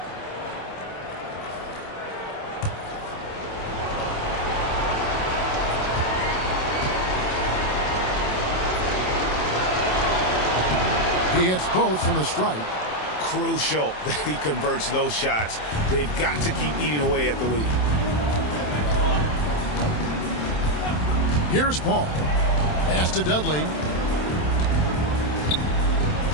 He hits both from the stripe. Crucial that he converts those shots. They've got to keep eating away at the lead. Here's Paul. Pass to Dudley.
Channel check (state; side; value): late; right; 27 ms